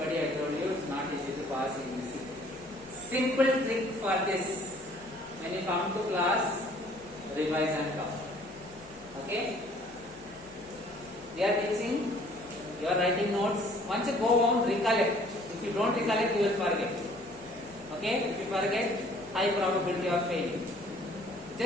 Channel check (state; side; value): noise; left; hum, 25 dB below the sound